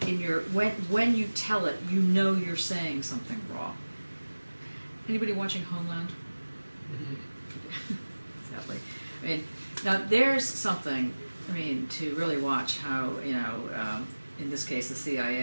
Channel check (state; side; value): inverted; both; correlation -1.00